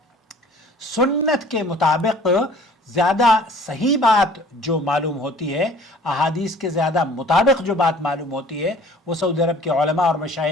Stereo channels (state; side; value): normal; both; correlation 0.50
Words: سنت کے مطابق زیادہ صحیح بات جو معلوم ہوتی ہے، احادیث کے زیادہ مطابق جو بات معلوم ہوتی ہے، وہ سعودی عرب کے علماء اور